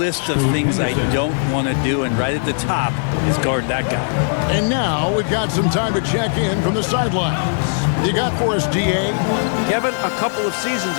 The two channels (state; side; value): silent; right; 67 dB below the other